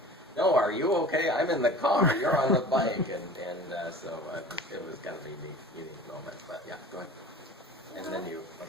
"No, are you okay? I'm in the car. You're on the bike." And so it was kind of a unique moment. But yeah, go ahead. And then you,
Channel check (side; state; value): both; normal; correlation 0.41